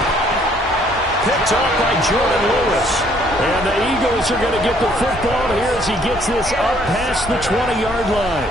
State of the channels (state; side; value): normal; both; correlation 0.63